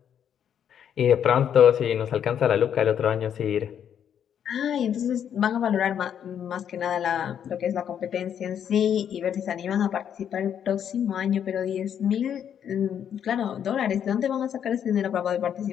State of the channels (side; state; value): right; quieter; 8.9 dB